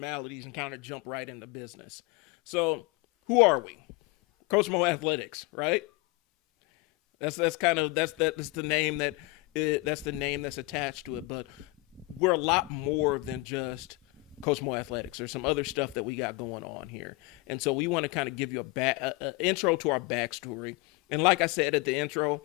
and kind of jump right into business. So who are we? Coach Mo Athletics, right? That's the name that's attached to it. But we're a lot more than just Coach Mo Athletics. There's some other stuff that we got going on here, and so we want to kind of give you a intro to our backstory. And like I said at the intro,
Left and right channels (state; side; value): quieter; right; 22.9 dB